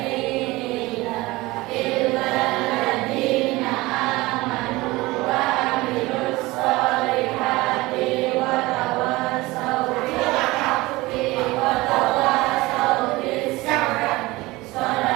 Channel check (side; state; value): left; quieter; 20.7 dB